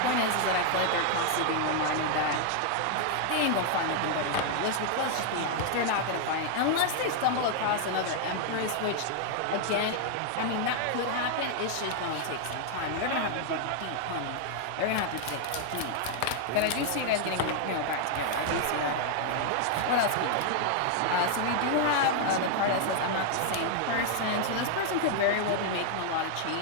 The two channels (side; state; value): both; different; correlation 0.00